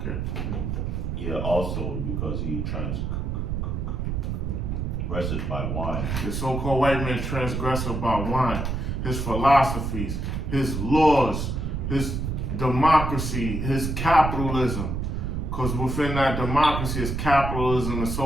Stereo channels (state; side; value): noise; right; rumble, 2 dB below the sound